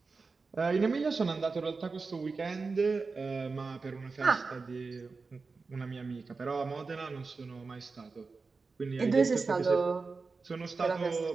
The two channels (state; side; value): quieter; left; 4.3 dB